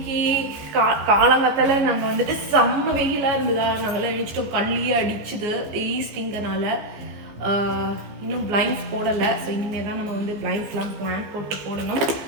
காலங்காத்தால நாங்கள் வந்துட்டு செம்ம வெயிலாக இருந்ததா, நாங்கள்லாம் எழுச்சிட்டோம். கண்ணிலேயே அடிச்சுது ஈஸ்டிங்கனால. இன்னும் பிளைண்ட்ஸ் போடலை. ஸோ இனிமேல் தான் நம்ம வந்து பிளைண்ட்ஸ்லாம் பிளான் போட்டு போடணும்.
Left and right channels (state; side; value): late; left; 15 ms